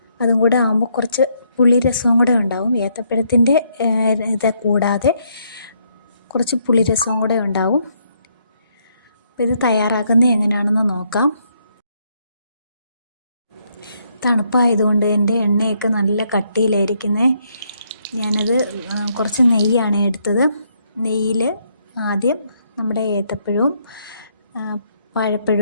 അതും കൂടെ ആകുമ്പോൾ കുറച്ച് പുളിരസവും കൂടെ ഉണ്ടാവും. ഏത്തപ്പഴത്തിൻ്റെ ഇത് കൂടാതെ കുറച്ച് പുളിരസവും കൂടെ ഉണ്ടാവും. അപ്പോൾ ഇത് തയ്യാറാക്കുന്നത് എങ്ങനെയാണെന്ന് നോക്കാം. തണുപ്പായതുകൊണ്ട് എൻ്റെ എണ്ണയൊക്കെ നല്ല കട്ടിയിലായിരിക്കുന്നത്. ഞാനത് കുറച്ച് നെയ്യാണ് എടുത്തത്. നെയ്യിൽ ആദ്യം നമ്മുടെ ഏത്തപ്പഴവും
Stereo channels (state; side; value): inverted; both; correlation -0.73